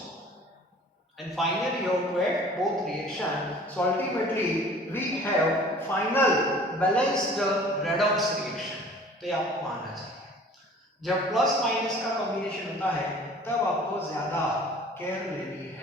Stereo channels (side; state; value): both; normal; correlation 0.48